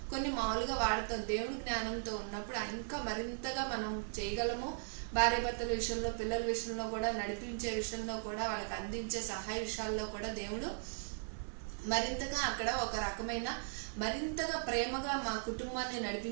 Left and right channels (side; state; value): left; silent; digital silence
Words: కొన్ని మామూలుగా వాడతాం. దేవుడి జ్ఞానంతో ఉన్నప్పుడు ఇంకా మరింతగా మనం చేయగలము. భార్య భర్తల విషయంలో, పిల్లల విషయంలో కూడా, నడిపించే విషయంలో కూడా, వాళ్ళకి అందించే సహాయ విషయాల్లో కూడా దేవుడు మరింతగా అక్కడ ఒక రకమైన మరింతగా ప్రేమగా మా కుటుంబాన్ని